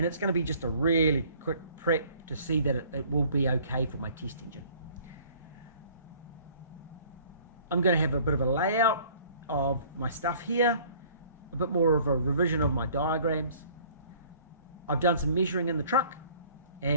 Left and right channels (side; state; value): both; inverted; correlation -0.54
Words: it's going to be just a really quick prep to see that it will be okay for my test engine. I'm going to have a bit of a layout of my stuff here, a bit more of a revision of my diagrams. I've done some measuring in the truck